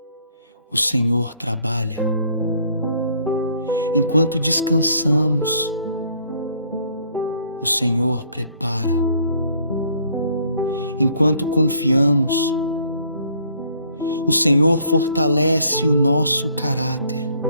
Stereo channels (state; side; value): inverted; both; correlation -0.62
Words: o Senhor trabalha. Enquanto descansamos, o Senhor prepara. Enquanto confiamos, o Senhor fortalece o nosso caráter.